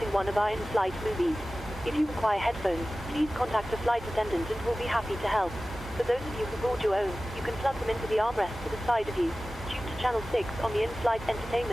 one of our in-flight movies. If you require headphones, please contact a flight attendant and we'll be happy to help. For those of you who brought your own, you can plug them into the armrest to the side of you. Tune to channel 6 on the in-flight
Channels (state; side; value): normal; both; correlation 0.96